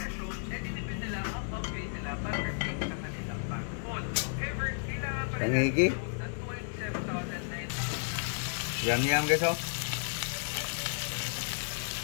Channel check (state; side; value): silent; right; digital silence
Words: Tangigi. Yum guys, oh.